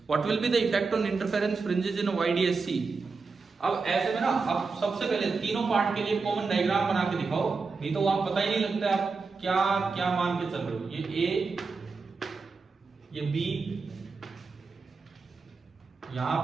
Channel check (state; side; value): quieter; left; 4.5 dB